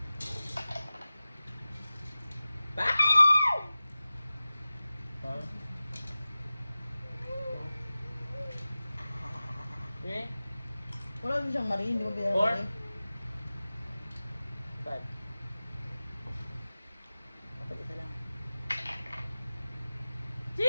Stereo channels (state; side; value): inverted; both; correlation -0.96